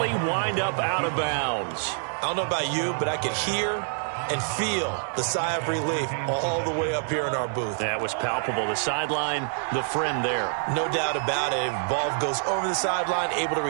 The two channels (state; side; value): silent; left; digital silence